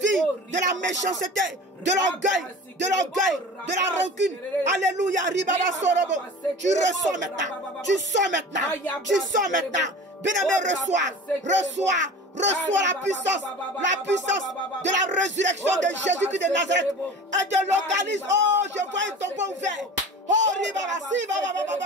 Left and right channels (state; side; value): normal; both; correlation 0.37